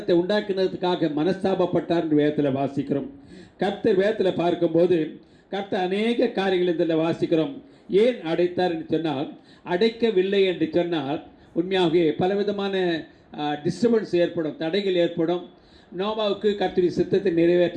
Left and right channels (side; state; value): both; identical; correlation 1.00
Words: உண்டாக்கினதுக்காக மனஸ்தாபப்பட்டார் என்று வேதத்தில் வாசிக்கிறோம். கர்த்தர் வேதத்தில் பார்க்கும்போது கர்த்தர் அநேக காரியங்கள் இதில் வாசிக்கிறோம். ஏன் அடைத்தார் என்று சொன்னால், அடைக்கவில்லை என்று சொன்னால் உண்மையாகவே பலவிதமான டிஸ்டர்பன்ஸ் ஏற்படும், தடைகள் ஏற்படும். நோவாவுக்கு கர்த்தருடைய சித்தத்தை